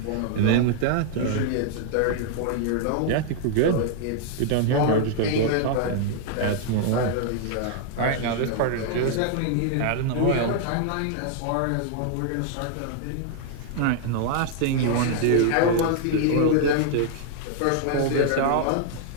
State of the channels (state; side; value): different; both; correlation 0.00